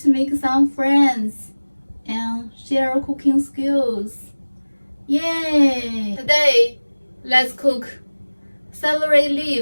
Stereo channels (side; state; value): both; inverted; correlation -1.00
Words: make some friends and share cooking skills. Yay! Today, let's cook celery